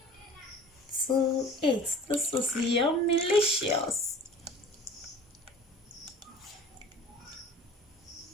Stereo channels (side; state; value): both; normal; correlation 0.43